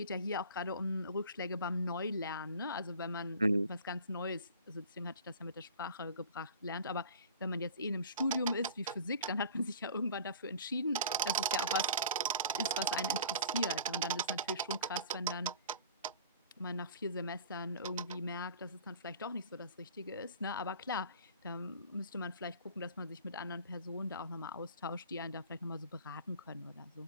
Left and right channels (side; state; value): both; inverted; correlation -0.44